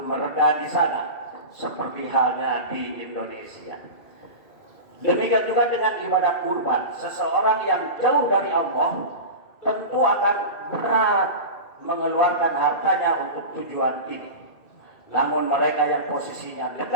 mereda di sana, seperti halnya di Indonesia. Demikian juga dengan ibadah kurban. Seseorang yang jauh dari Allah tentu akan berat mengeluarkan hartanya untuk tujuan ini. Namun mereka yang posisinya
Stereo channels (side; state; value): right; late; 2.3 ms